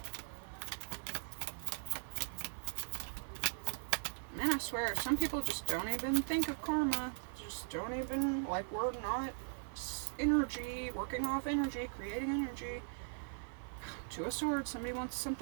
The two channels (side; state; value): left; silent; digital silence